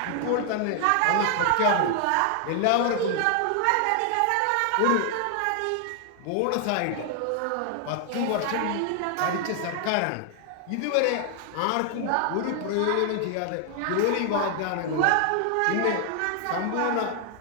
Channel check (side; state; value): both; different; correlation 0.00